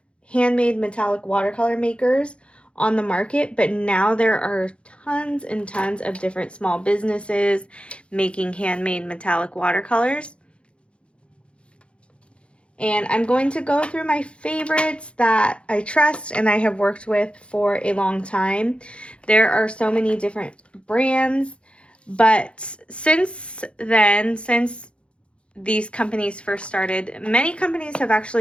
handmade metallic watercolor makers on the market, but now there are tons and tons of different small businesses making handmade metallic watercolors. And I'm going to go through my favorites that I trust and I have worked with for a long time. There are so many different brands, but since these companies first started, many companies have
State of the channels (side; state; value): right; late; 0.058 ms